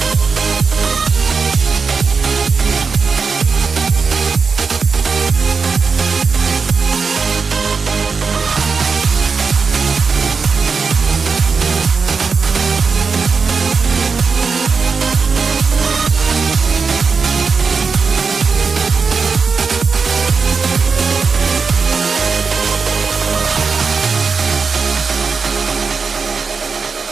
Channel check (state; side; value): quieter; left; 5.1 dB